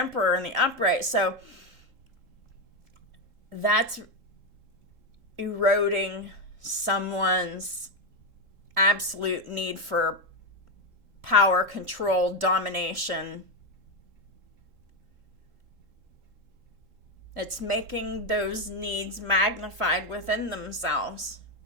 in the upright. So that's eroding someone's absolute need for power, control, domination. It's making those needs magnified within themselves.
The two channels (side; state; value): left; late; 3.8 ms